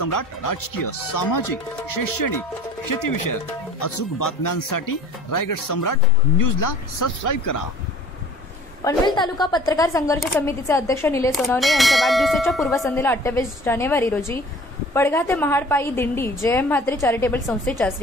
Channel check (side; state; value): both; normal; correlation 0.48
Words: राजकीय, सामाजिक, शैक्षणिक, शेतीविषयक अचूक बातम्यांसाठी रायगड सम्राट न्यूजला सबस्क्राईब करा। पनवेल तालुका पत्रकार संघर्ष समितीचे अध्यक्ष निलेश सोनवणे यांच्या वाढदिवसाच्या पूर्वसंध्येला 28 जानेवारी रोजी पडघा ते महाड पायी दिंडी जयम म्हात्रे चॅरिटेबल संस्थेच्या